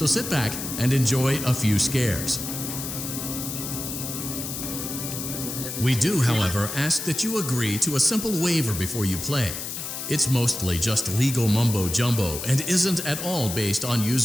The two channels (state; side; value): noise; left; hiss, 6 dB below the sound